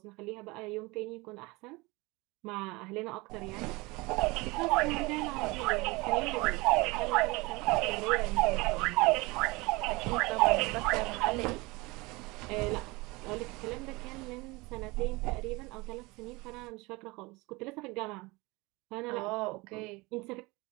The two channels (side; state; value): left; quieter; 24.0 dB